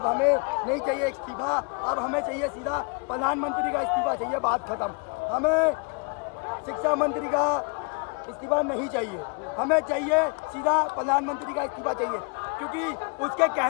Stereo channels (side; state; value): right; quieter; 34.5 dB